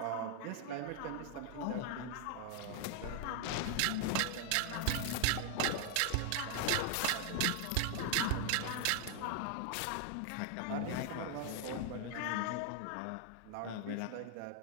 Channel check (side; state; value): both; different; correlation 0.00